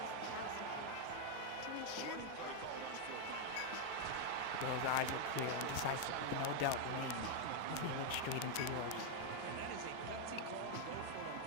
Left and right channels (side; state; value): both; different; correlation 0.00